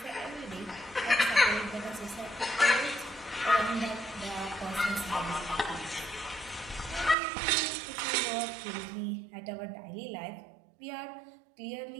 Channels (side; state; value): left; drops out; at 7.2 s